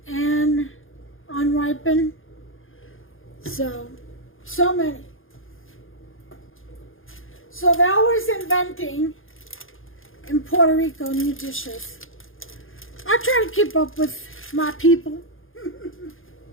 and unripened. So many. So they're always inventing in Puerto Rico new dishes. I try to keep up with my people.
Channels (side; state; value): right; late; 0.59 ms